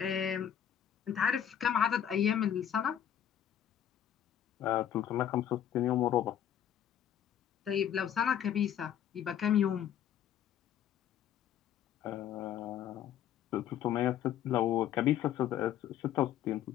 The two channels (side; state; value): right; quieter; 9.9 dB